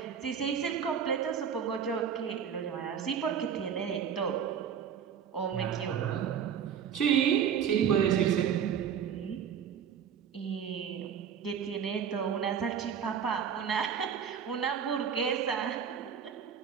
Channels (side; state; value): left; quieter; 8.0 dB